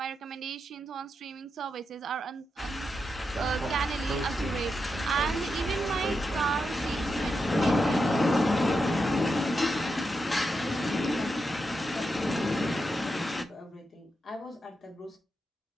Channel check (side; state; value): both; normal; correlation 0.86